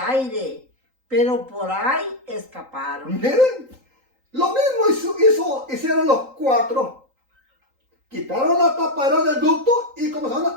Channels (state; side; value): late; left; 3.8 ms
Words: pero por ahí escaparon. Miren, lo mismo hicieron los cuatro. Quitaron la tapadera del ducto y